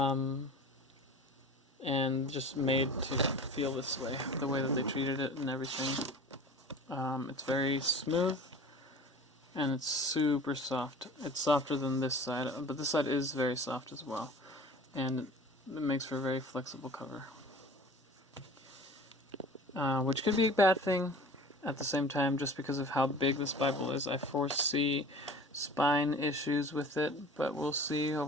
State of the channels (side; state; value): both; normal; correlation 0.41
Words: just made to feel this way, the way that they treated it and everything. It's very smooth, and it's super soft. It's softer than this side, but this side is very soft as well. And it makes for a very flexible cover. Which could be a bad thing at the same time, just because of how big this Bible is. I foresee spine issues with it, but we'll see